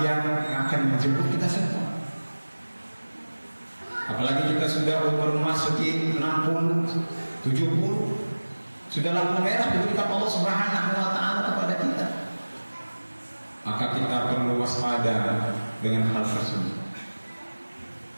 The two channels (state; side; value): inverted; both; correlation -1.00